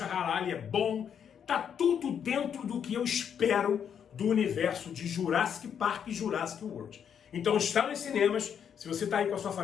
Ali é bom, tá tudo dentro do que eu espero do universo de Jurassic Park e Jurassic World. Então está nos cinemas, se você está aí com a sua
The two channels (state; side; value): quieter; right; 8.1 dB